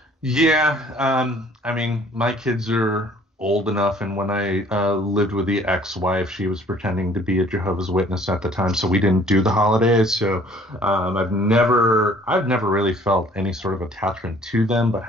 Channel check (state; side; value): normal; both; correlation 0.56